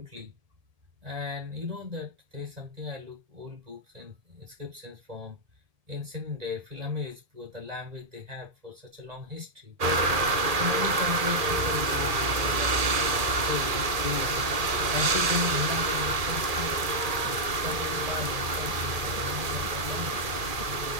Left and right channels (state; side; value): late; left; 1.7 ms